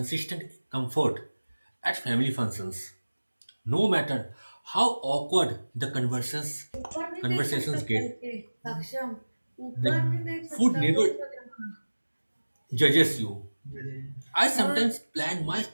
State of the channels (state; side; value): inverted; both; correlation -1.00